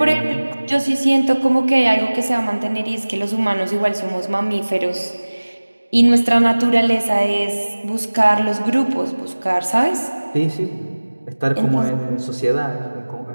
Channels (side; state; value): both; inverted; correlation -1.00